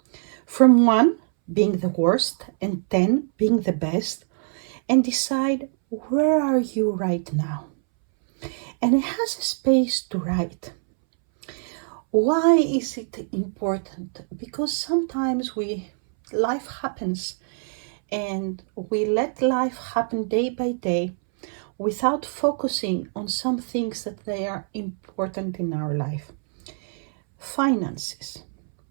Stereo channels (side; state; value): left; silent; 63 dB below the other